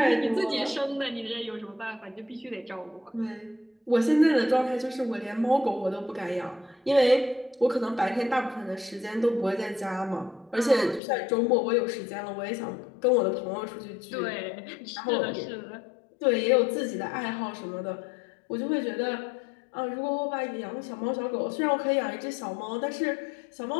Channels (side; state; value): right; drops out; at 11.0 s